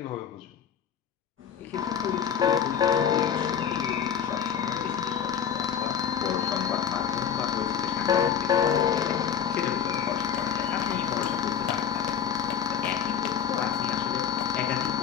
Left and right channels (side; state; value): right; quieter; 8.1 dB